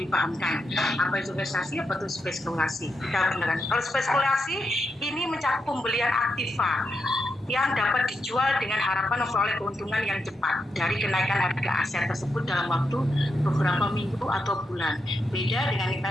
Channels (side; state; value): both; normal; correlation 0.84